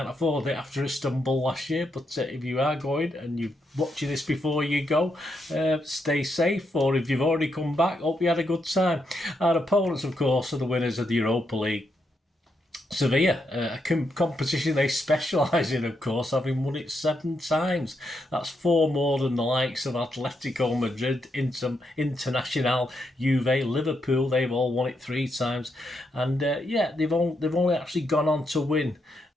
afford it after Istanbul last year. But if you are going and you're watching this before you go, stay safe. Or if you've already come back, hope you had a good time. Our opponents, of course, are the winners of the Europa League. Sevilla, a competition they specialise in, of course, having won it 7 times. That's 4 more than the likes of Atletico Madrid, Internacional, Juve, Liverpool. They've all won it 3 times, and yeah, they've only actually gone on to win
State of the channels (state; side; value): normal; both; correlation 0.81